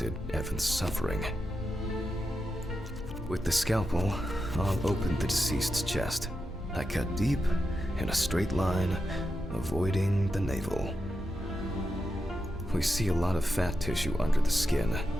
Evan's suffering. With the scalpel, I'll open the deceased's chest. I cut deep, in a straight line, avoiding the navel. We see a lot of fat tissue under the skin.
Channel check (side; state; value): both; normal; correlation 0.88